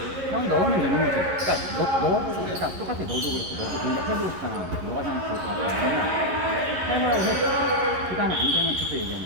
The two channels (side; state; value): left; late; 11 ms